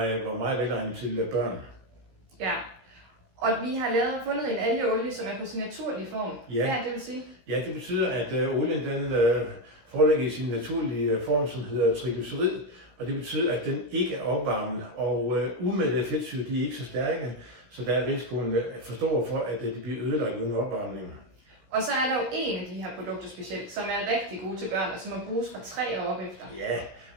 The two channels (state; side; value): late; left; 16 ms